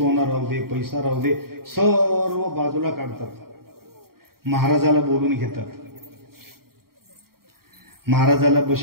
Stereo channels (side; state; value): left; late; 0.93 ms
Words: राहू दे, पैसा राहू दे, सर्व बाजूला काढतात। महाराजाला बोलून घेतात, महाराजाला